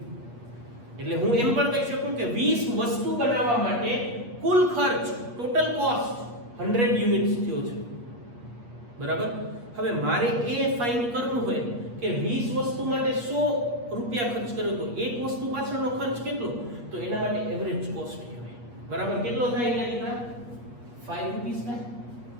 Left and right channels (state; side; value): late; left; 8.3 ms